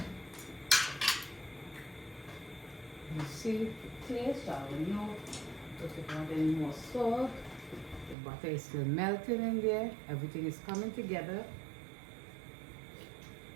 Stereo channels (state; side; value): drops out; left; at 8.2 s